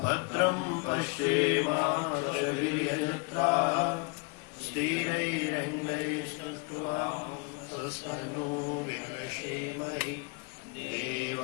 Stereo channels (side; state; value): right; quieter; 31.6 dB